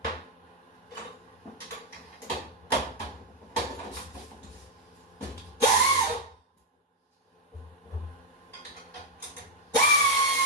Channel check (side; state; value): both; normal; correlation 0.01